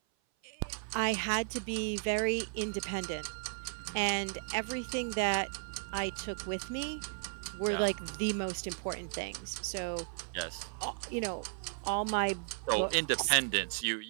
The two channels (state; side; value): silent; left; 54 dB below the other